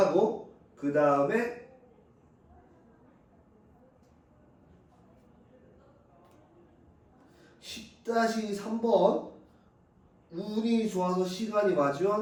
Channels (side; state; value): both; identical; correlation 1.00